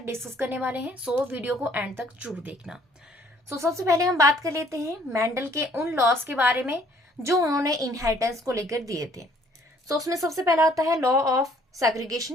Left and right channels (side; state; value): both; normal; correlation 0.61